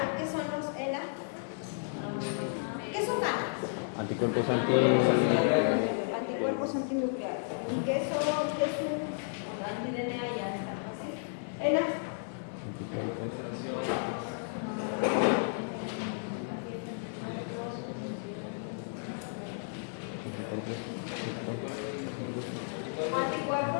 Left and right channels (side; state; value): right; silent; 56 dB below the other